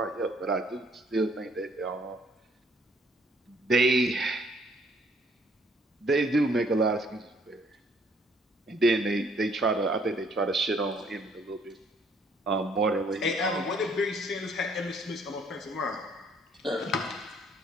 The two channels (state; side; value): normal; both; correlation 0.64